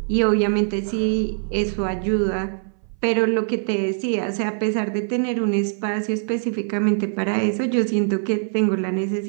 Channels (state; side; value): silent; left; 60 dB below the other